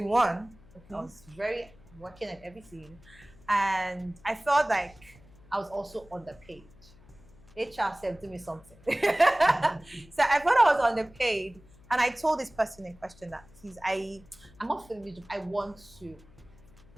one. I was very working at everything. And I felt like I was also underpaid. HR said, do me something. So I thought I was underpaid. And I told this person in question that, please, I'm not feeling this job. I want to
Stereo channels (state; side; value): noise; left; hum, 25 dB below the sound